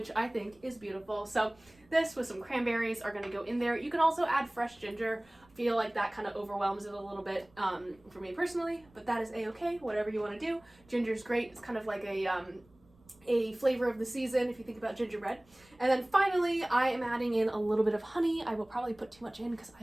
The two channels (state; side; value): noise; right; rumble, 30 dB below the sound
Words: I think is beautiful. So this with some cranberries are going to go in there. You can also add fresh ginger. I feel like that kind of overwhelms it a little bit for me personally, but that is a-okay, whatever you want to do. Ginger's great. It's kind of like a flavor of the season if you think about gingerbread. And then finally, I am adding in a little bit of honey. I will probably put too much in because